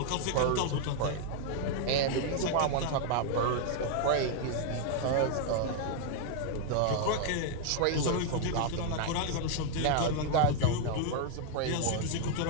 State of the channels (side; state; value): both; different; correlation 0.00